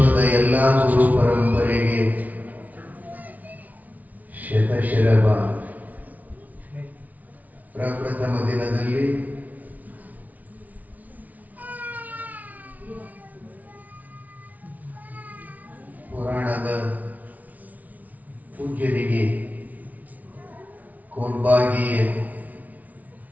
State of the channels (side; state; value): left; late; 0.075 ms